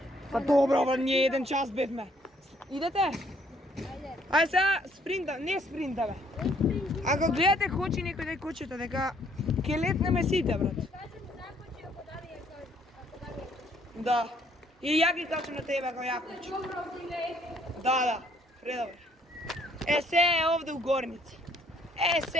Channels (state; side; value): normal; both; correlation 0.65